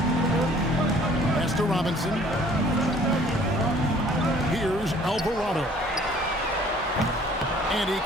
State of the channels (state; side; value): normal; both; correlation 0.55